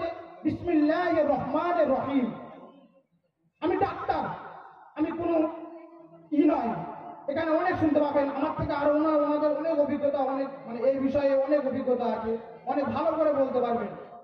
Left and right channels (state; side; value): identical; both; correlation 1.00